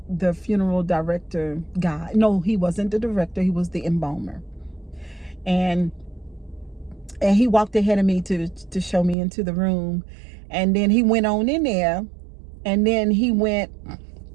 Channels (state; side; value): drops out; left; at 9.2 s